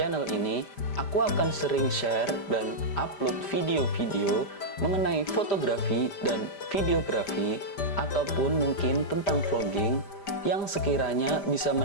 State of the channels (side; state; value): right; late; 5.0 ms